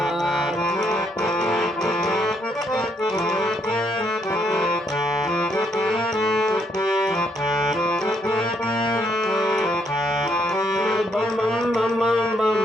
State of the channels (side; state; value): both; normal; correlation 0.72